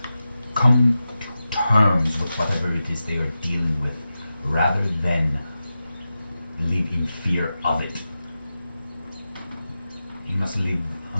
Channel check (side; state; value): both; inverted; correlation -0.92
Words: come to terms with whatever it is they are dealing with, rather than live in fear of it. You must live,